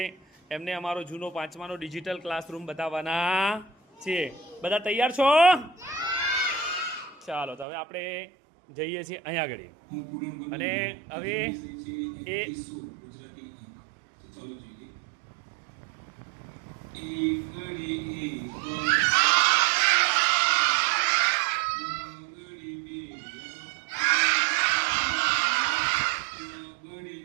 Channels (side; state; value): left; drops out; at 7.7 s